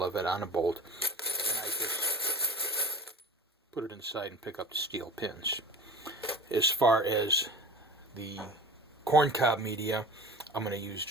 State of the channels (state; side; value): normal; both; correlation 0.37